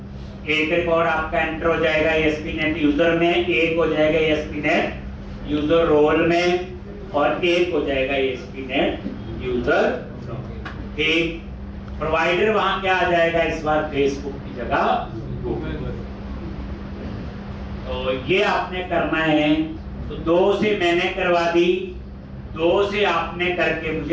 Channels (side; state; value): both; identical; correlation 1.00